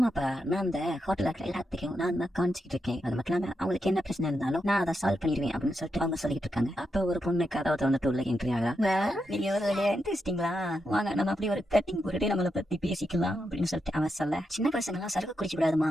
நான் அந்த ஹோட்டல்ல இருக்கிற எல்லாத்துக்கும் நான் தான் காமிச்சிட்டு இருக்கேன், அது மட்டும் இல்லாம அவங்களுக்கு என்ன பிரச்சனை இருந்தாலும் நான் அதை சால்வ் பண்ணிடுவேன் அப்படின்னு சொல்லிட்டு அவங்க சொல்லிட்டு இருக்காங்க. அப்ப ஒரு பொண்ணு கதவை வந்துட்டு உள்ள என்ட்ரி ஆகா. நீங்க ஒரு வழியா இன்ட்ரெஸ்டிங்களா, வாங்க நம்ம அப்படி ஒரு கட்டிங் போட்டுட்டு நம்மளை பத்தி பேசிக்கலாம் அப்படின்னு சொல்லிட்டு அவன் சொல்ல, சின்ன பசங்க எல்லாம் சரக்கு குடிச்சு விடாதுமா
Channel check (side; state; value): both; normal; correlation 0.85